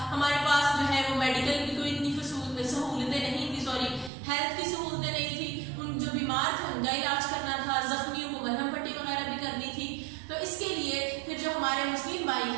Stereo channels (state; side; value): drops out; left; at 4.1 s